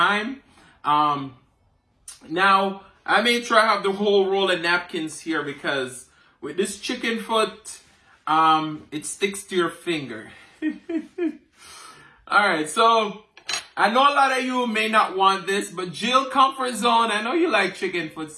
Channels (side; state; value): both; identical; correlation 1.00